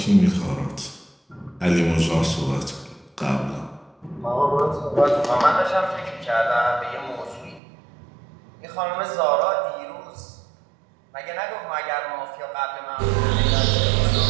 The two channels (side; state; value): left; drops out; at 7.6 s